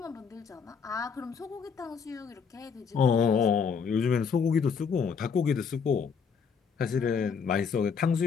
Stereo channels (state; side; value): quieter; right; 6.2 dB